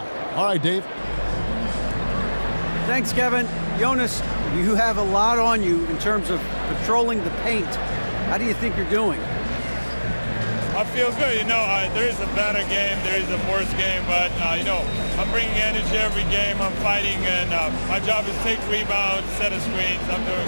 All right, Dave. Thanks, Kevin. Jonas, you have a lot on you in terms of patrolling the paint. How do you think you're doing? I feel good. There is a better game, there is a worse game, but, I'm bringing energy every game. I'm fighting, and my job is take rebounds, set of screens. I'm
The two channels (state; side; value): inverted; both; correlation -1.00